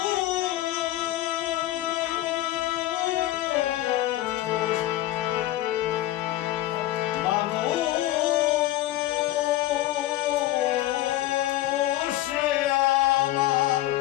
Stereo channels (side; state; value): right; quieter; 15.2 dB